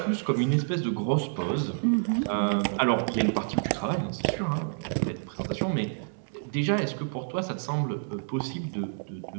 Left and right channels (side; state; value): left; silent; digital silence